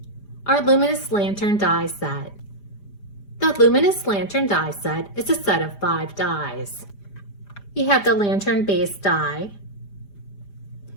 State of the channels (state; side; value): late; right; 5.0 ms